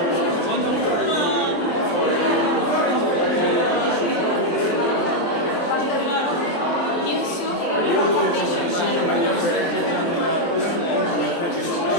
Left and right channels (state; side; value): late; right; 23 ms